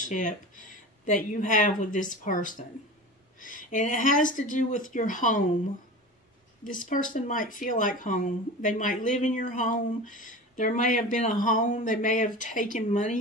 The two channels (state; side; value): normal; both; correlation 0.33